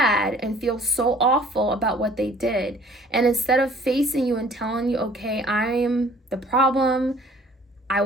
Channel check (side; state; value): both; normal; correlation 0.53